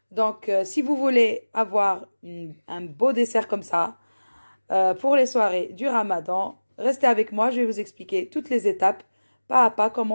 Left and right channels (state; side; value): inverted; both; correlation -1.00